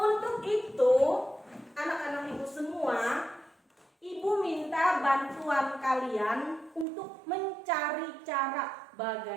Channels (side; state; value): left; drops out; at 6.9 s